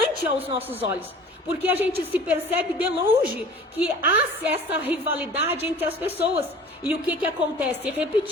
aos nossos olhos, porque a gente se percebe de longe que há essa rivalidade entre as pessoas. E o que acontece?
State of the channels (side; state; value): both; normal; correlation 0.44